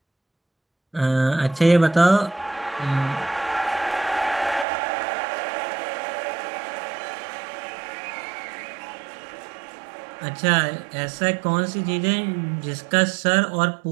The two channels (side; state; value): left; drops out; at 4.7 s